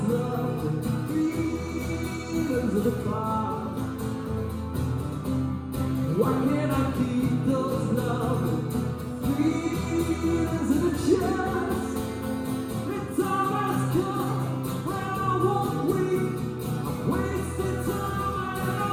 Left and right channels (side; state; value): both; identical; correlation 1.00